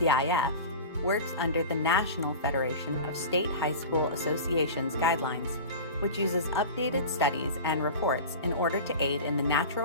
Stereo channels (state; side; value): inverted; both; correlation -0.32